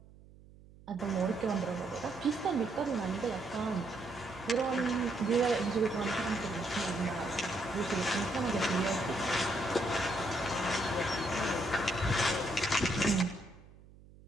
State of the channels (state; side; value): noise; right; hum, 22 dB below the sound